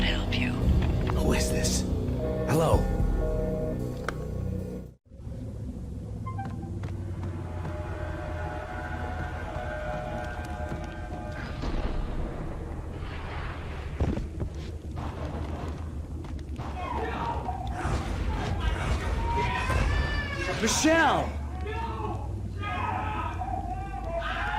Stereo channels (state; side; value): identical; both; correlation 1.00